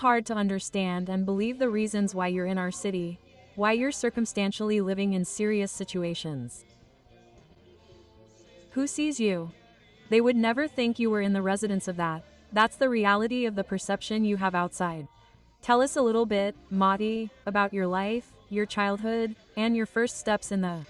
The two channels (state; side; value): identical; both; correlation 1.00